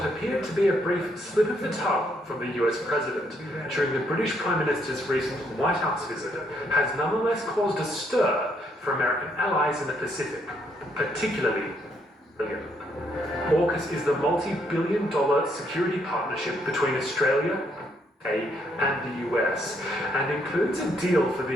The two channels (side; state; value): both; normal; correlation 0.72